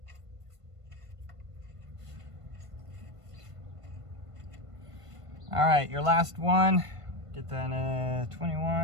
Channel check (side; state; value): left; late; 1.5 ms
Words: All right, your last one. Get that